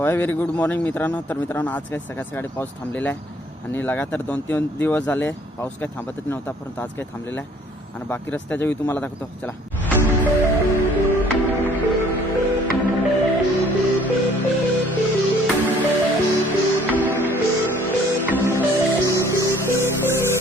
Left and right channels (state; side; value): normal; both; correlation 0.58